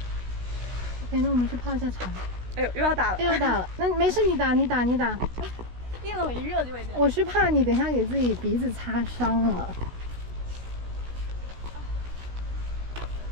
OK， 那我们去泡一下茶。哎呦，又要打了。那没事，你打。一冷一热就会这样。我是怕你等一下给自己鼻子擦伤了。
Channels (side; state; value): left; late; 16 ms